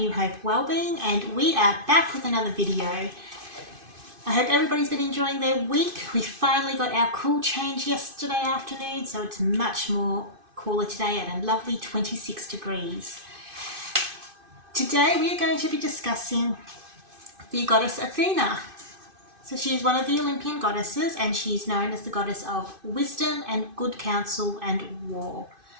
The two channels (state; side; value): late; left; 2.5 ms